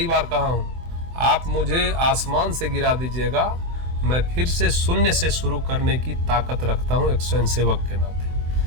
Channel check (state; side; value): late; left; 24 ms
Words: बार कहा हूँ, आप मुझे आसमान से गिरा दीजिएगा, मैं फिर से शून्य से शुरू करने की ताकत रखता हूँ एक स्वयंसेवक के नाते।